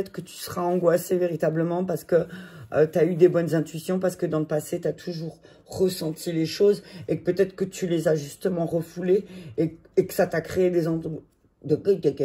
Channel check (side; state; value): both; identical; correlation 1.00